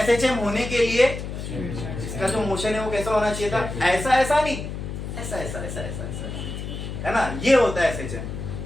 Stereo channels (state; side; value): noise; left; hum, 7 dB below the sound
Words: होने के लिए इसका जो मोशन है वो कैसा होना चाहिए था? ऐसा ऐसा नहीं, ऐसा ऐसा ऐसा ऐसा ऐसा, है ना? ये होता है एसएचएम।